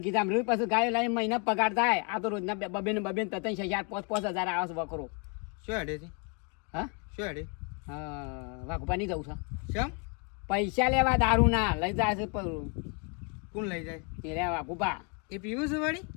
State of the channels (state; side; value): quieter; right; 35.7 dB